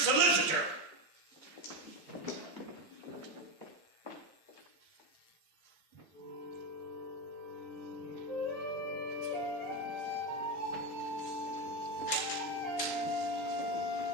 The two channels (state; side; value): normal; both; correlation 0.12